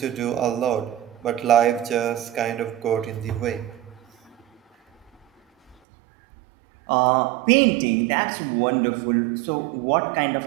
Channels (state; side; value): drops out; left; at 5.8 s